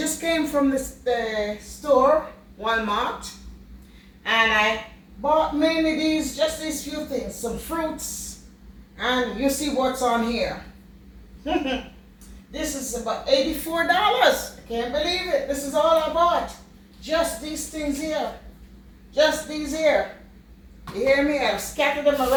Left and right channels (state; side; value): identical; both; correlation 1.00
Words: came from the store, Walmart, and I bought mainly just these few things, some fruits, and you see what's on here. This is about $84. I can't believe it. This is all I bought. Just these things here. Just these here. You hear me? I've scattered them